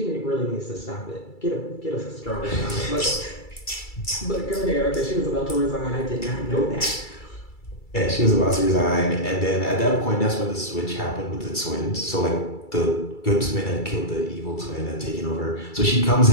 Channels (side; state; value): right; late; 2.3 ms